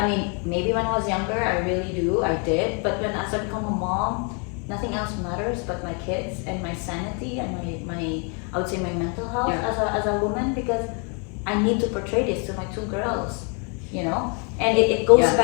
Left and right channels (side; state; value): right; quieter; 36.9 dB